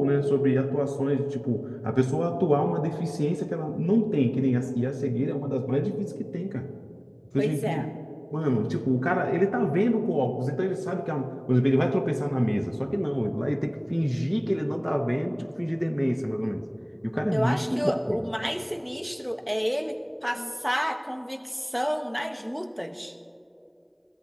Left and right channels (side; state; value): both; identical; correlation 1.00